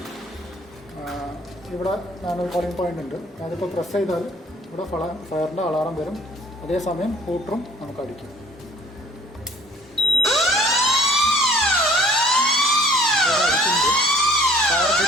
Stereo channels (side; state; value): both; normal; correlation 0.56